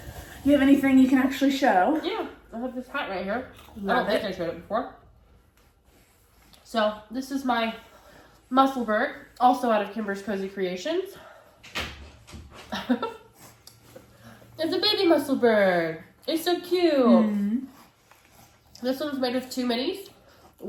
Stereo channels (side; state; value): both; identical; correlation 1.00